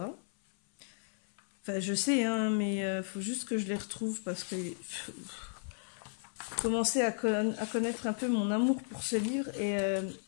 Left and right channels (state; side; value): silent; right; 55 dB below the other